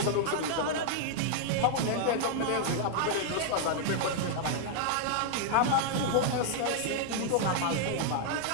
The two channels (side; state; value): both; different; correlation -0.01